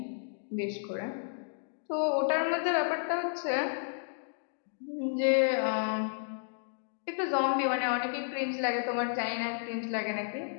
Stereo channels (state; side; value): silent; right; digital silence